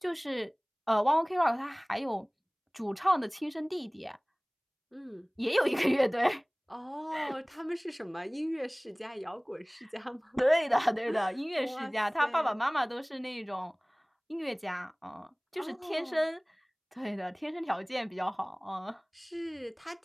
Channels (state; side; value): identical; both; correlation 1.00